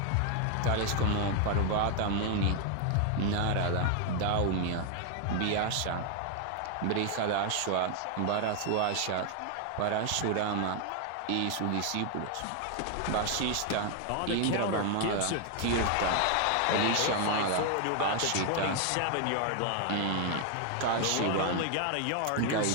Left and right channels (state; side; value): different; both; correlation 0.00